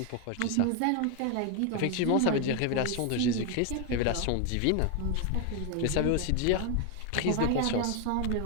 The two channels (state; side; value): different; both; correlation 0.01